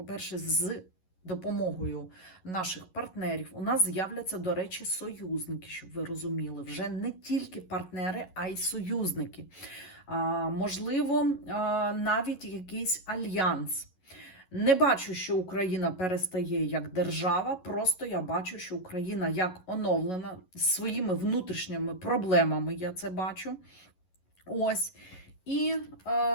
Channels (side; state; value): right; late; 11 ms